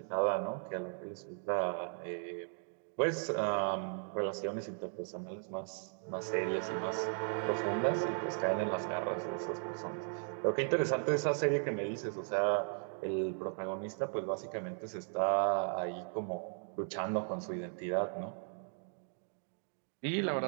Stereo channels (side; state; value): left; silent; 53 dB below the other